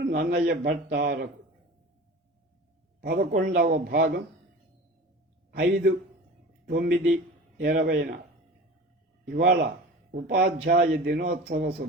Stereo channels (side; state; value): both; normal; correlation 0.36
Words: నన్నయ్య భట్టారకు 11వ భాగం 5/9/20 ఇవాళ ఉపాధ్యాయ దినోత్సవ